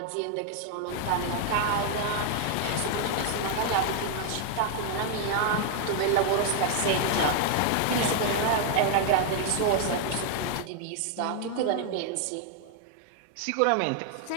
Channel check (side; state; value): both; different; correlation 0.00